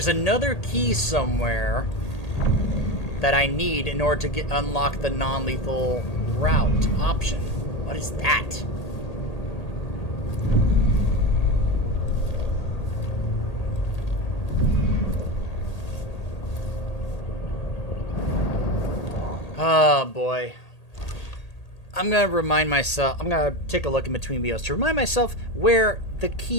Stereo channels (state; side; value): late; right; 1.8 ms